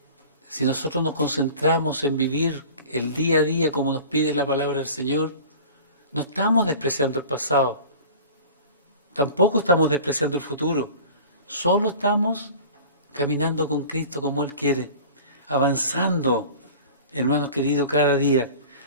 Si nosotros nos concentramos en vivir el día a día como nos pide la palabra del Señor, no estamos despreciando el pasado, tampoco estamos despreciando el futuro, solo estamos caminando con Cristo como Él quiere, avanzando, hermanos queridos, cada día.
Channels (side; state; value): both; inverted; correlation -0.40